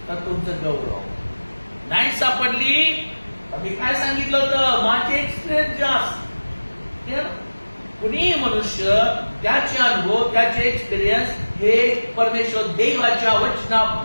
तर तुमचं गौरव, नाही सापडली तर मी काय सांगितलं होतं, माझे एक्सपिरियन्स जास्त. कुणीही मनुष्य त्याचे अनुभव, त्याचे एक्सपिरियन्स हे परमेश्वर देवाच्या वचना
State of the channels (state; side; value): inverted; both; correlation -1.00